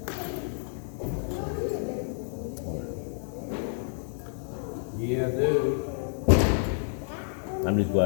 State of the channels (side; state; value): right; silent; digital silence